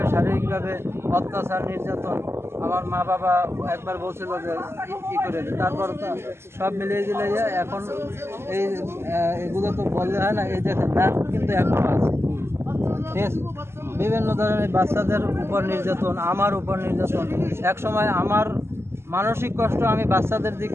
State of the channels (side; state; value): left; late; 0.12 ms